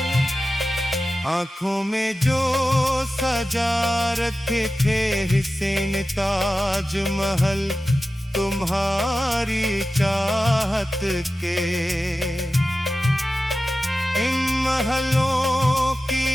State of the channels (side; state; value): both; normal; correlation 0.94